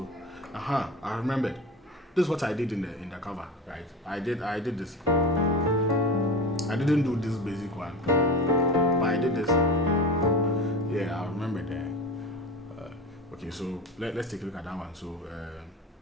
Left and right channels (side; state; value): both; normal; correlation 0.29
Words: I remembered. This is what I did in the cover, right? I did this. I didn't do this basic one, but I did this. Yeah, I remember that. Okay, so let's take a look at that one. So